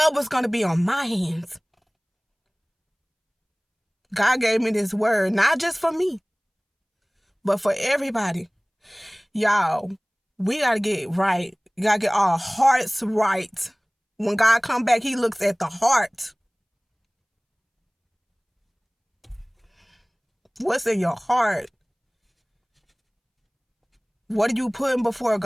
was going to be on my hands. God gave me this word, not just for me, but for everybody. Y'all, we got to get right. We got to get our hearts right. When God come back, he looks at the heart. What's in your heart? What are you putting before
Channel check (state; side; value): identical; both; correlation 1.00